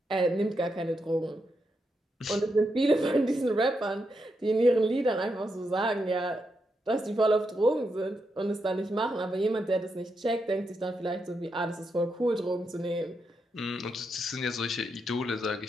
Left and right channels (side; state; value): both; normal; correlation 0.83